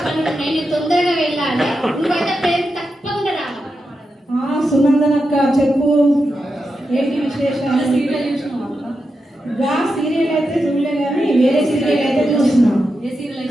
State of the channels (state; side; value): normal; both; correlation 0.88